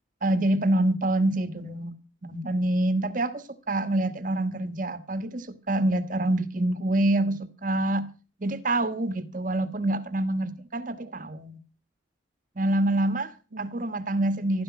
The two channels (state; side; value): normal; both; correlation 0.63